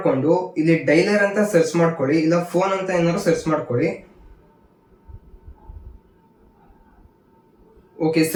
ಇಲ್ಲಿ ಡೈಲರ್ ಅಂತ ಸರ್ಚ್ ಮಾಡ್ಕೊಳ್ಳಿ, ಇಲ್ಲ ಫೋನ್ ಅಂತ ಏನಾದ್ರು ಸರ್ಚ್ ಮಾಡ್ಕೊಳ್ಳಿ. ಓಕೆ,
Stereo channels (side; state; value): both; identical; correlation 1.00